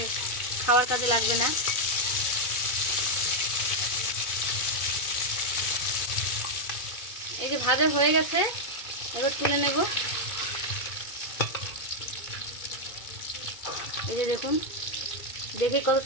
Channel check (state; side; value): late; right; 2.2 ms